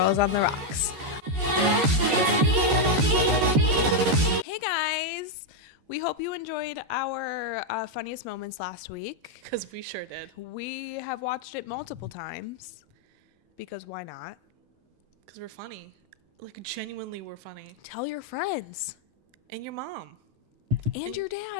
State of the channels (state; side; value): late; left; 14 ms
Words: on the Rocks. Hey, guys. We hope you enjoyed our funniest moments last week. Because we sure did. We have watched it multiple times. Because why not? Because we're funny. Like, genuinely, we're funny. Tell your friends. And your mom. And your